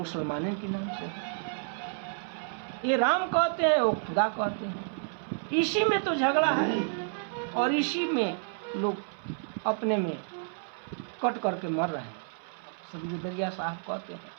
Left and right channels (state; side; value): silent; left; 58 dB below the other